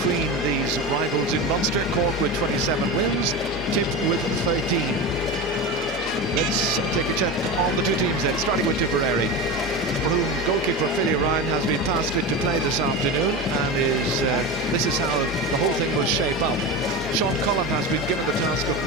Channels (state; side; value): normal; both; correlation 0.24